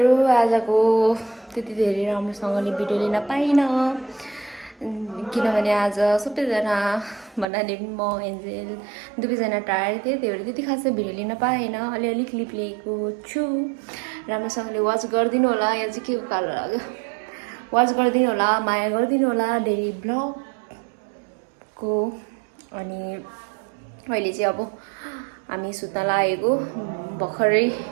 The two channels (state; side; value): drops out; left; at 7.5 s